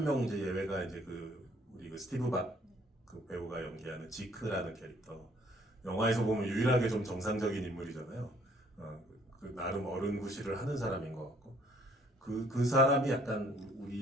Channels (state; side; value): normal; both; correlation 0.61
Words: 명 이제 예외가 이제 우리 스티브 박 그 배우가 연기하는 지크라는 캐릭터. 영화에서 보면 유일하게 좀 정상적인 인물이잖아요. 그 나름 어른 구실을 하는 사람인 것 같고, 그 사람이 약간